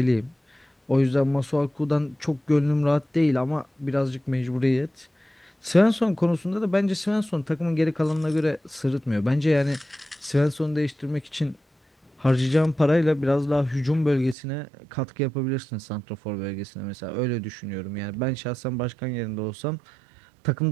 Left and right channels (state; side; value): drops out; left; at 14.4 s